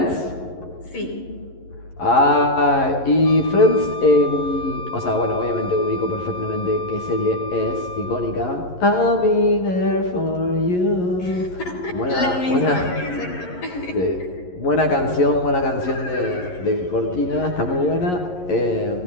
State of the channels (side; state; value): right; late; 11 ms